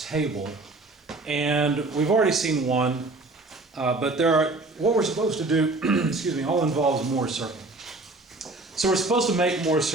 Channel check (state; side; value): quieter; left; 3.1 dB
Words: and we've already seen one, but what we're supposed to do, excuse me, all involves Moore's circle. So we're supposed to make Moore's